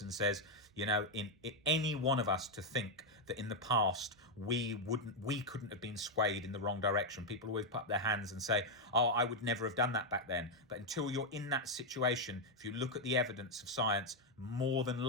says, in any one of us to think that in the past we couldn't have been swayed in the wrong direction. People always put up their hands and say, oh, I would never have done that back then. But until you're in that situation, if you look at the evidence of science, more than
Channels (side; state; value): both; normal; correlation 0.01